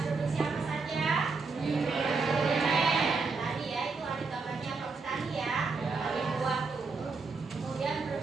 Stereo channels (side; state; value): left; quieter; 4.3 dB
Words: produksi apa saja? Tadi ya, itu ada gambarnya Pak Petani ya. Ada buah tuh. Kemudian